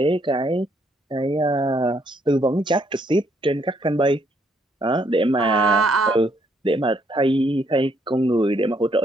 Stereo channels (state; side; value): normal; both; correlation 0.71